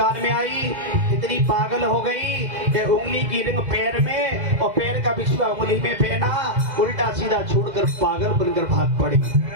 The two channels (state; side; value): late; left; 2.0 ms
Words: में आई, इतनी पागल हो गई कि उंगली की रिंग पैर में और पैर का बिछुआ उंगली में पहना, उल्टा सीधा छोड़कर पागल बनकर भाग पड़ी।